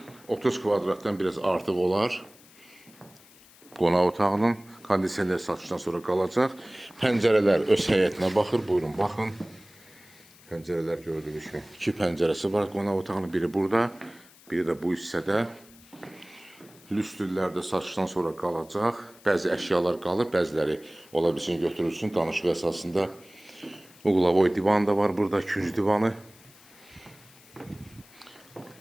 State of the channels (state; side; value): noise; left; hiss, 25 dB below the sound